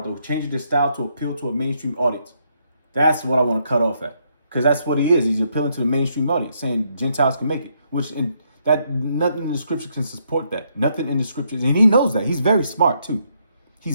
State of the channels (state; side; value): inverted; both; correlation -0.75